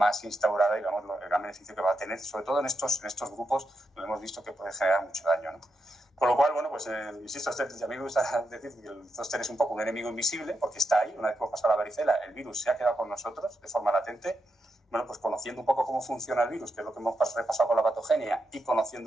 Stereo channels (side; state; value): both; normal; correlation 0.85